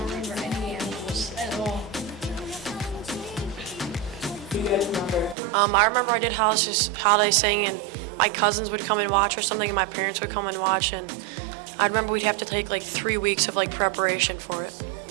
remember any animals at all. Do you guys remember? I remember I did holiday sing, and my cousins would come and watch or something, and my parents would come and watch, and I remember we'd have to take like 3 weeks of like preparation for it.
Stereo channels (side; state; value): left; drops out; at 5.4 s